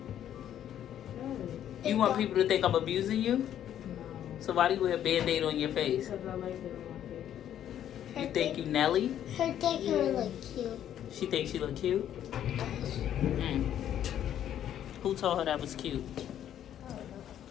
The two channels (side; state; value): right; quieter; 10.6 dB